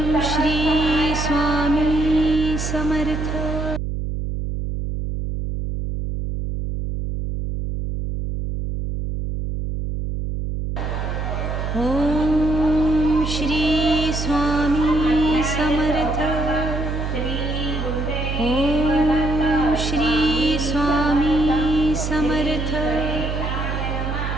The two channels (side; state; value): right; noise; hum, 3 dB below the sound